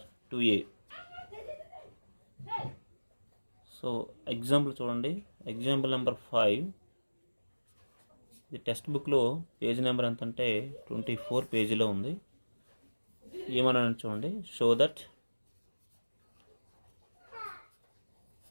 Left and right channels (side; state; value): both; inverted; correlation -1.00